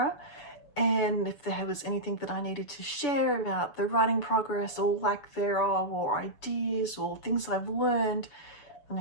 and if there was anything that I needed to share about the writing progress or lack thereof, or ideas or things I've learned, then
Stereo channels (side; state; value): right; late; 6.9 ms